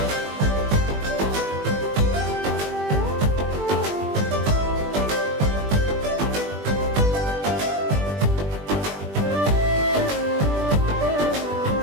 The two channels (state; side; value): late; left; 20 ms